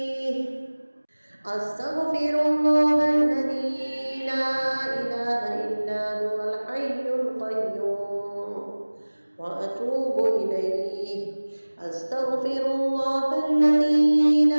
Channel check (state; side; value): inverted; both; correlation -1.00